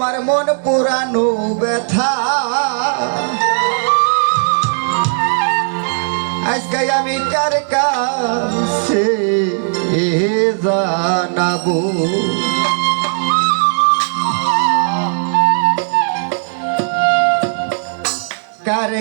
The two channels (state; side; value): silent; left; 69 dB below the other